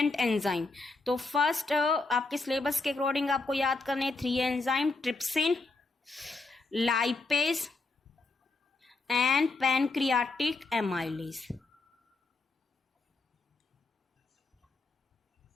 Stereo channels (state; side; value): quieter; right; 3.5 dB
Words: enzyme. तो first आपके syllabus के according आपको याद करने 3 enzyme, trypsin, lipase and pancreatic amylase.